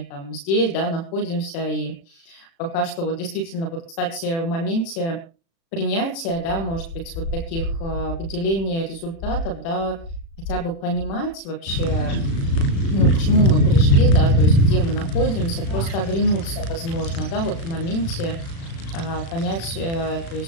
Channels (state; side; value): late; right; 36 ms